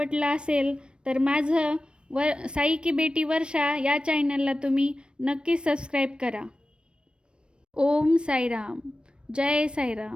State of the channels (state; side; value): late; left; 0.056 ms